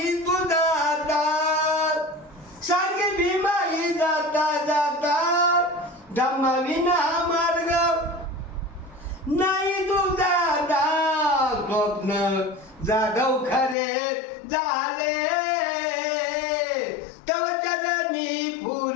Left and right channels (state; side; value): drops out; right; at 13.8 s